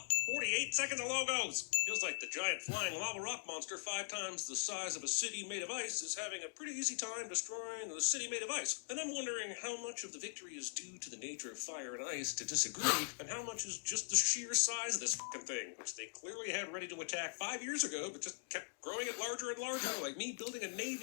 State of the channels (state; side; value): silent; right; digital silence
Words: 48 seconds of logos. Feels like the giant flying lava rock monster 5 times the size of a city made of ice is having a pretty easy time destroying the city made of ice. And I'm wondering how much of the victory is due to the nature of fire and ice to disagree, and how much is just the sheer size of this fucking thing, which they clearly had ready to attack 5 years ago, but just kept growing it larger and larger, like me building a